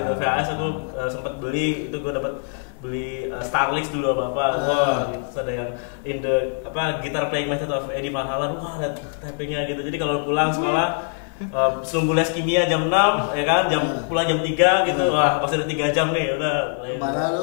VHS aku sempat beli itu gue dapat beli Starlix dulu apa wah gitu ada yang in the guitar playing method of Eddie Van Halen wah ada tappingnya gitu jadi kalau pulang sekolah sebelum les kimia jam 6 ya kan pulang jam 3 gitu wah masih ada 3 jam nih udah malah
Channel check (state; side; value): silent; right; 57 dB below the other